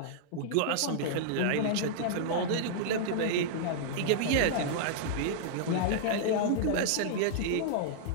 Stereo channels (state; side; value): different; both; correlation -0.02